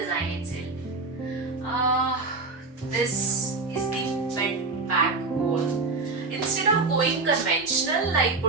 itself. This is the bed back wall. Instead of going conventional like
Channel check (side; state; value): left; quieter; 3.8 dB